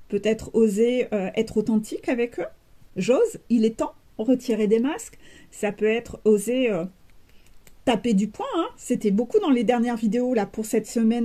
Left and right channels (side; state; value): both; identical; correlation 1.00